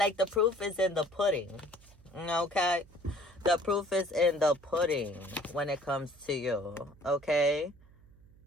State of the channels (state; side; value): noise; right; hum, 25 dB below the sound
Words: the proof is in the pudding, okay? The proof is in the pudding when it comes to you, okay?